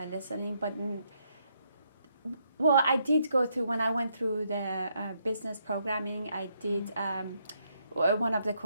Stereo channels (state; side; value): inverted; both; correlation -0.75